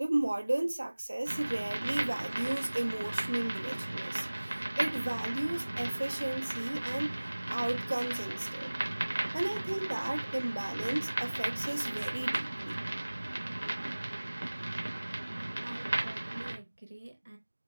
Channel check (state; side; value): inverted; both; correlation -1.00